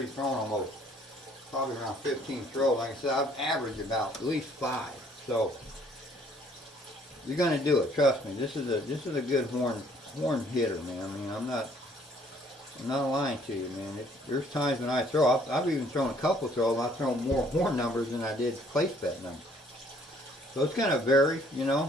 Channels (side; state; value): both; normal; correlation 0.61